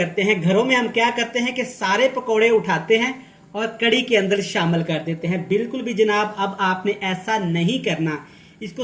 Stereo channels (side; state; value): both; identical; correlation 1.00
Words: हैं, घरों में हम क्या करते हैं कि सारे पकोड़े उठाते हैं और कड़ी के अंदर शामिल कर देते हैं। बिल्कुल भी जनाब अब आपने ऐसा नहीं करना। इसको